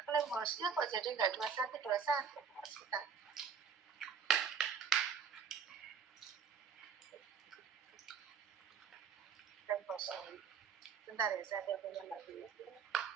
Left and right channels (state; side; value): quieter; left; 6.6 dB